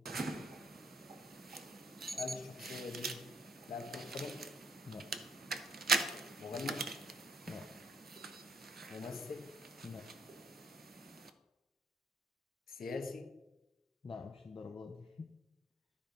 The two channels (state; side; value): normal; both; correlation 0.69